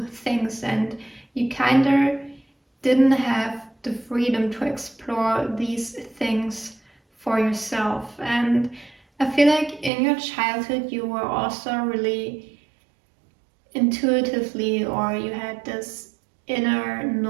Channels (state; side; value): drops out; left; at 9.9 s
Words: things, and you kind of didn't have the freedom to explore these things for yourself. And I feel like in your childhood you were also really intuitively, or you had this inner